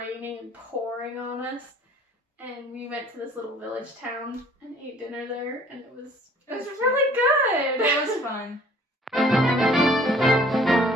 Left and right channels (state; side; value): normal; both; correlation 0.54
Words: and pouring on us. And we went to this little village town and ate dinner there, and it was really good. It was fun.